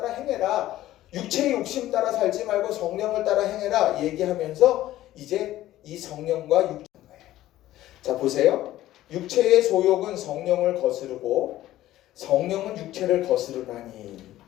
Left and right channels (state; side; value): quieter; right; 14.6 dB